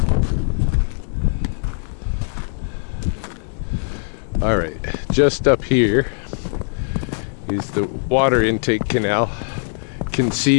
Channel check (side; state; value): right; silent; digital silence